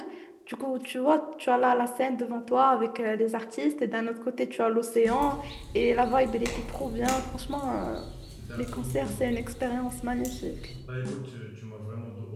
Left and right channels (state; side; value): identical; both; correlation 1.00